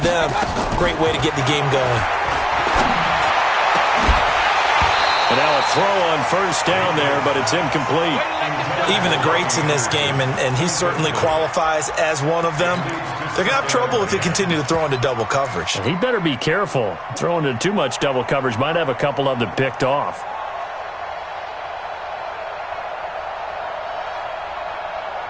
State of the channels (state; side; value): identical; both; correlation 1.00